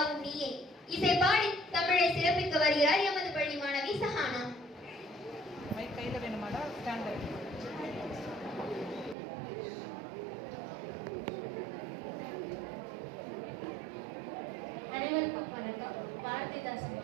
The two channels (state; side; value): drops out; left; at 9.2 s